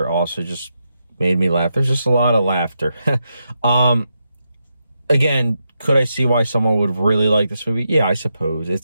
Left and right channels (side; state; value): both; inverted; correlation -0.84